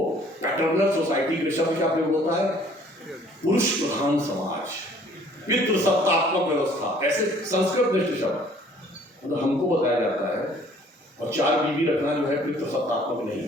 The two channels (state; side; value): normal; both; correlation 0.56